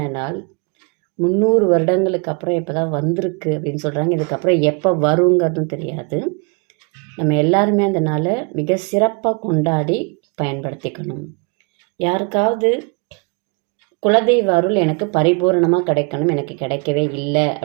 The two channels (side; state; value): left; quieter; 34.0 dB